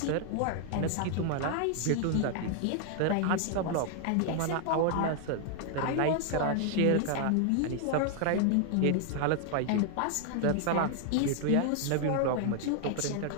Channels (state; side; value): different; both; correlation 0.00